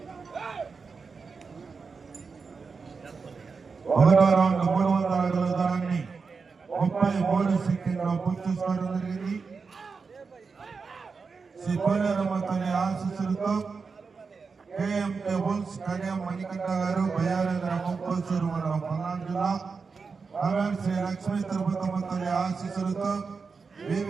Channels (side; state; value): left; quieter; 4.9 dB